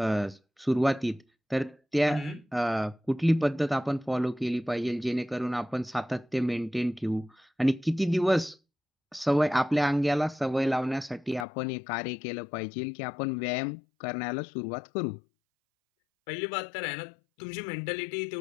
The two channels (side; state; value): right; drops out; at 11.5 s